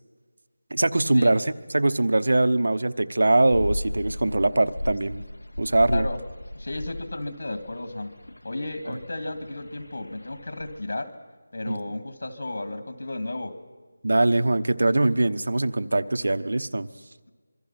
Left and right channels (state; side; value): inverted; both; correlation -0.99